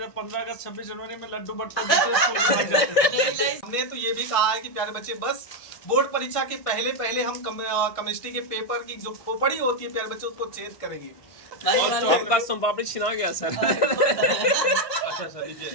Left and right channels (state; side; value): late; right; 1.5 ms